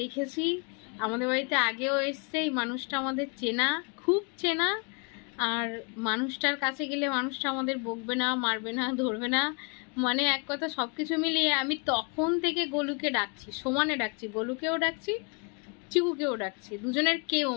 দেখেছি, আমাদের বাড়িতে আগেও এসছে, এই মানুষটা আমাদের চেনা, খুব চেনা। আর মানুষটার কাছে গেলে মানুষটা আমাদের বকবে না, মারবে না, ধরবে না, মানে এক কথা সব কিছু মিলিয়ে আমি তখন থেকে গোলুকে ডাকছি, সমানে ডাকছি, গোলুকেও ডাকছি, চিকুকেও ডাকছি, দুজনের কেউ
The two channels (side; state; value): right; quieter; 35.0 dB